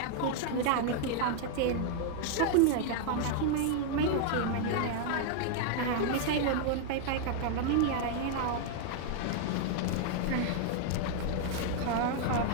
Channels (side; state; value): both; different; correlation 0.00